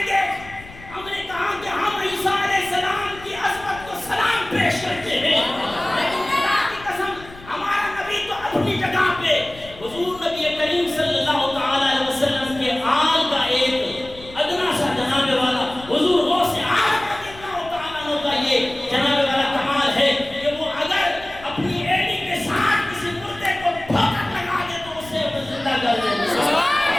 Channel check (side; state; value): left; noise; rumble, 19 dB below the sound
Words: گے، ہم نے کہا کہ ہم عیسیٰ علیہ السلام کی عظمت کو سلام پیش کرتے ہیں، لیکن اللہ کی قسم ہمارا نبی تو اپنی جگہ پہ حضور نبی کریم صلی اللہ تعالی علیہ وسلم کے آل کا ایک ادنا سا جناب والا حضور غوث اعظم رضی اللہ تعالیٰ عنہ کا یہ جناب والا کمال ہے کہ وہ اگر اپنی ایڑی کے ساتھ کسی مردے کو ٹھوکر لگا دے تو اسے زندہ کر دے۔